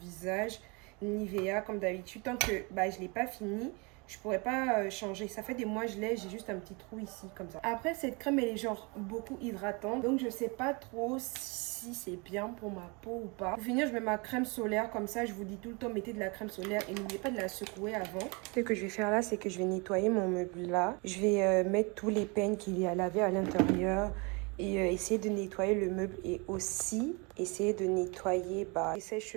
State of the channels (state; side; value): quieter; left; 29.8 dB